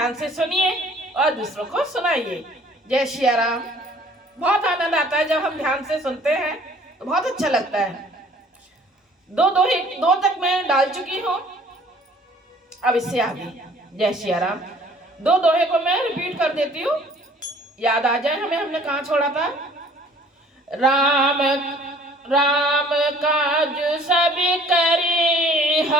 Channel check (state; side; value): normal; both; correlation 0.54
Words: से सुनिए और दूसरों को सुनाइए। जय श्री राम। बहुत आनंद आता है जब हम ध्यान से सुनते हैं तो बहुत अच्छा लगता है। दो तक मैं डाल चुकी हूँ, अब इससे आगे। जय श्री राम। दो दोहे को मैं रिपीट कर देती हूँ, याद आ जाए हमें हमने कहाँ छोड़ा था। राम राम काज सब करे